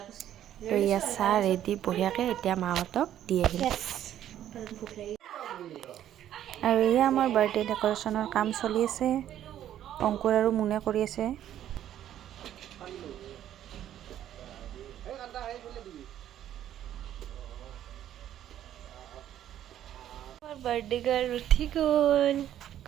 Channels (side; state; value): left; quieter; 11.4 dB